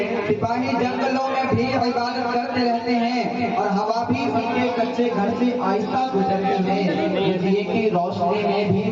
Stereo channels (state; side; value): identical; both; correlation 1.00